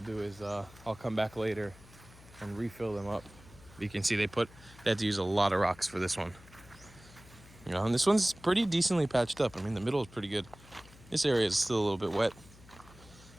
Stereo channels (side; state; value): left; noise; hum, 22 dB below the sound